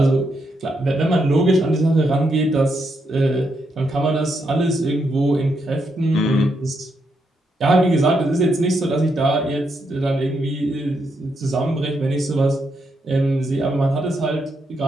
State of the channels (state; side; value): normal; both; correlation 0.80